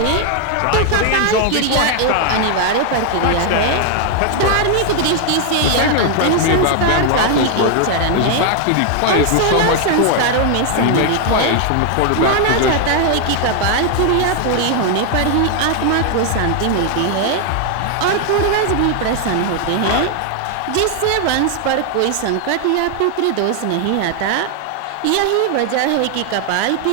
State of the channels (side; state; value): both; different; correlation 0.00